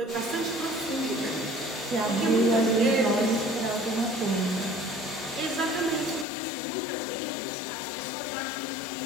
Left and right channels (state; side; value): drops out; right; at 6.2 s